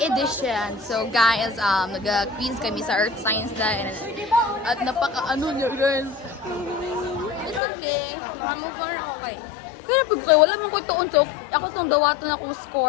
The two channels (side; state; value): right; drops out; at 7.6 s